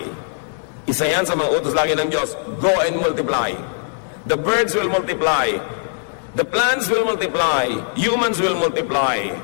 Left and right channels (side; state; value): right; silent; digital silence